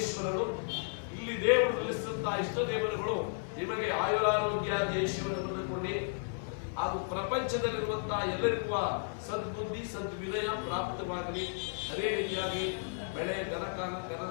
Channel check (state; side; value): silent; right; 55 dB below the other